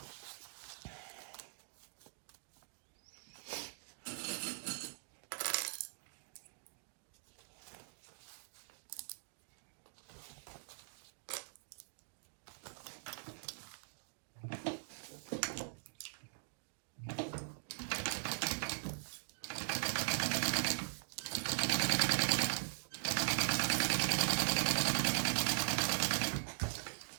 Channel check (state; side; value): silent; left; digital silence